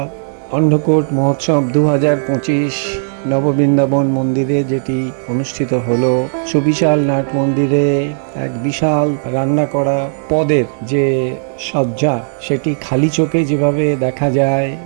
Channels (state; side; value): silent; left; 63 dB below the other